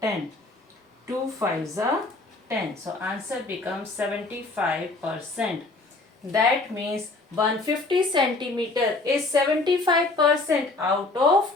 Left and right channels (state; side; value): quieter; right; 3.2 dB